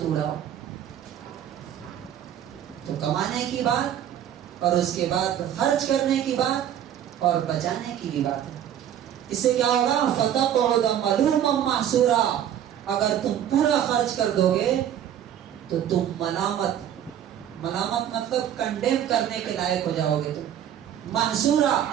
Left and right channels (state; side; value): quieter; left; 10.3 dB